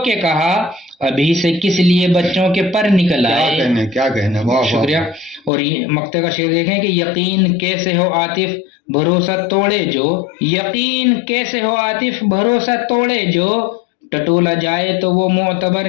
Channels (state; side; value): drops out; right; at 5.5 s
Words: کے کہا، ابھی سے کس لیے بچوں کے پر نکل آئے. کیا کہنے کیا کہنے، واہ واہ. شکریہ. اور یہ مقطع کا شعر دیکھیں کہ یقین کیسے ہو عاطف بھروسہ توڑے جو، یقین کیسے ہو عاطف بھروسہ توڑے جو، ٹٹولا جائے تو وہ معتبر